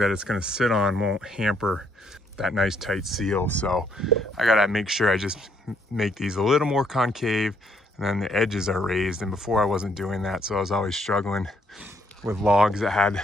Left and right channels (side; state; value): both; normal; correlation 0.70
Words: it's gonna sit on won't hamper that nice tight seal. So I gotta make sure I just make these a little more concave, and then the edges are raised. And before I wasn't doing that, so I was always struggling with logs that had